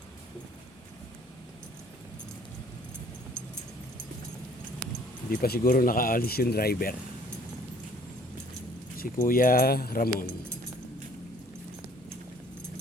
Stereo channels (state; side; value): normal; both; correlation 0.57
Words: Hindi pa siguro nakaalis yung driver. Si Kuya Ramon.